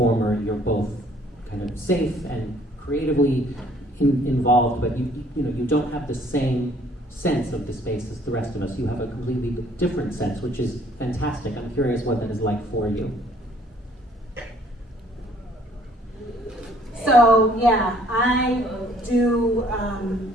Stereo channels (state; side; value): normal; both; correlation 0.60